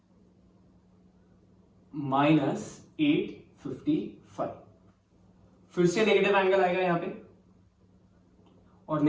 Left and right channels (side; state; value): both; identical; correlation 1.00